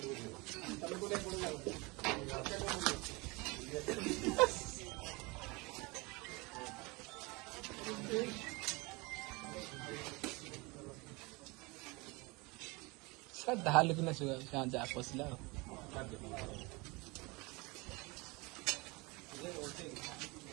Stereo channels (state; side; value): quieter; left; 25.9 dB